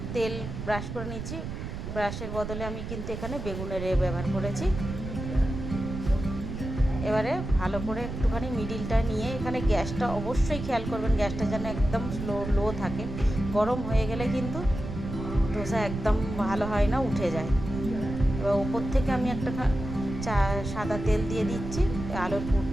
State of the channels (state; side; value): noise; right; rumble, 7 dB below the sound